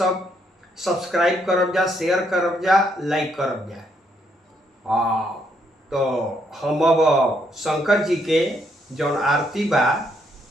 सब्सक्राइब करब जा, शेयर करब जा, लाइक करब जा। तो हम अब शंकर जी के जौन आरती बा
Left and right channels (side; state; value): both; normal; correlation 0.73